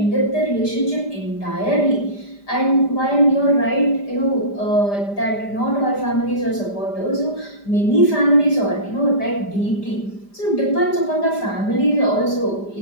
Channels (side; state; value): right; late; 5.0 ms